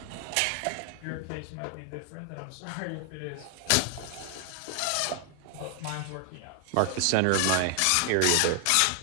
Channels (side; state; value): both; different; correlation 0.00